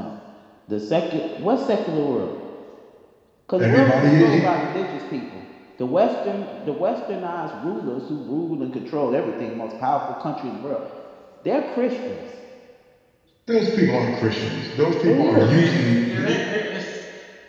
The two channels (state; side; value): identical; both; correlation 1.00